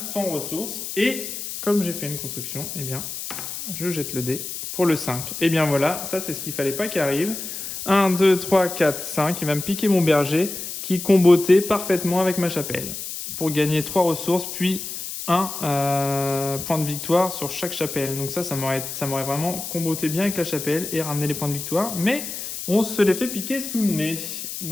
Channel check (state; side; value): noise; left; hiss, 7 dB below the sound